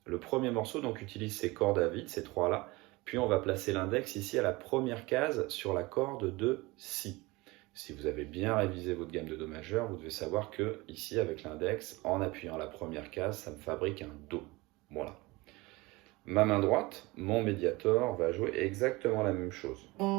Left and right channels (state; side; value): quieter; left; 22.6 dB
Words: Le premier morceau donc utilise ces cordes à vide, ces trois-là, puis on va placer l'index ici à la première case sur la corde de Si. Si vous avez bien révisé votre gamme de Do majeur, vous devez savoir que ici avec l'index, en appuyant la première case, ça me fabrique un Do. Voilà. Ma main droite, mon médiator, va jouer exactement la même chose.